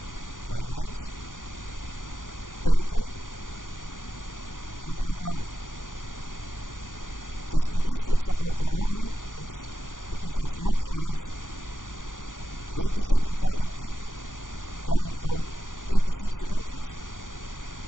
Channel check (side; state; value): right; late; 0.88 ms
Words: finance, territory, and an army. The statistics about the army is it is as much as 27,000 people coming from 86 countries,